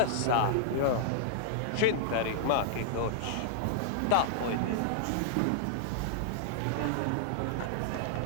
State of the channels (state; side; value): different; both; correlation -0.01